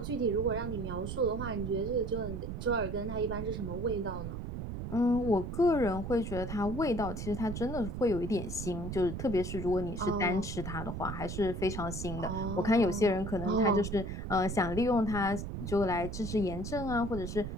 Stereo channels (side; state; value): right; noise; rumble, 6 dB below the sound